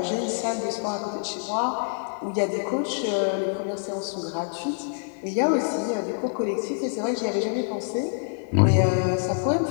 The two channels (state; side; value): silent; right; 55 dB below the other